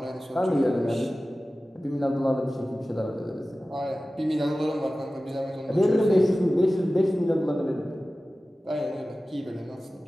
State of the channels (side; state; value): both; normal; correlation 0.96